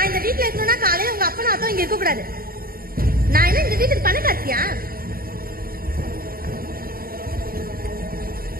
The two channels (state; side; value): late; left; 0.43 ms